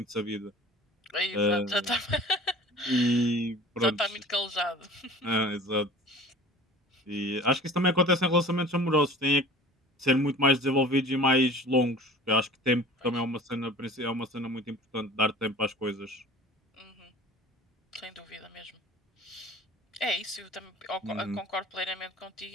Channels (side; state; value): both; normal; correlation 0.43